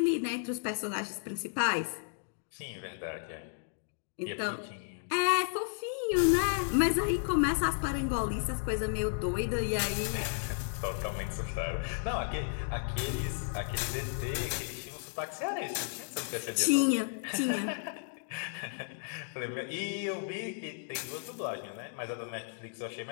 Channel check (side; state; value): right; silent; digital silence